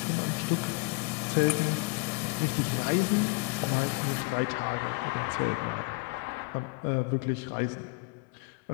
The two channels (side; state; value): right; quieter; 27.4 dB